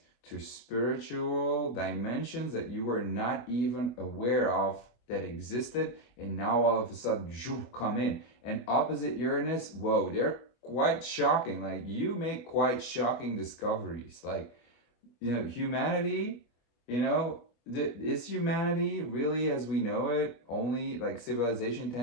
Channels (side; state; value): right; late; 25 ms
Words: to spiritual dimensions that you were not even aware of that existed, and now all of a sudden come in. And opposite Uranus, whoa, they're quite shocking. Like, you make quite shocking discoveries. Like, humanity, is humanity really as we know it only like civilization